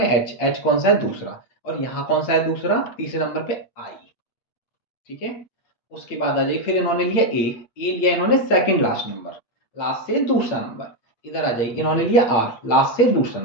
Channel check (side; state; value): right; late; 8.7 ms